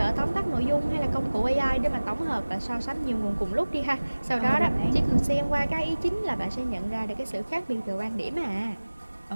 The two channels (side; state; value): both; inverted; correlation -1.00